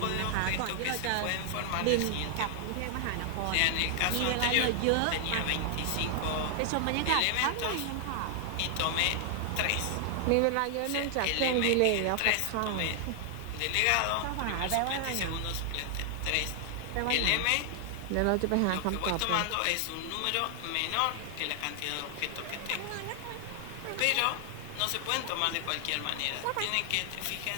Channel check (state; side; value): different; both; correlation 0.00